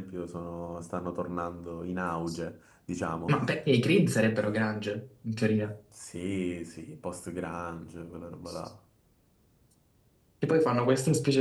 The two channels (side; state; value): both; identical; correlation 1.00